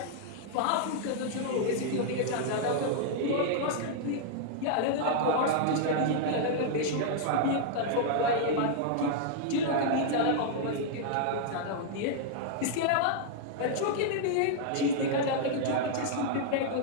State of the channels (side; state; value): both; different; correlation -0.01